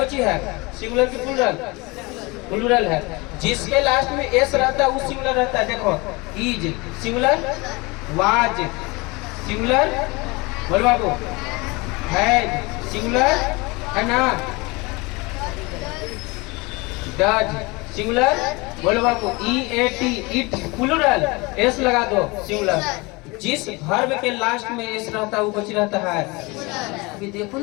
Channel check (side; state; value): right; quieter; 25.3 dB